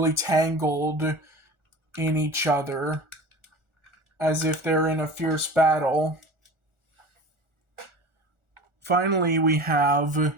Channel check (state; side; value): late; left; 1.4 ms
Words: tangled in each other, as if they're in a fierce battle. Finally, we have